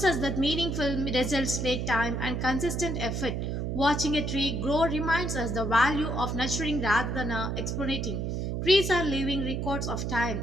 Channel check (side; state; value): right; noise; hum, 2 dB below the sound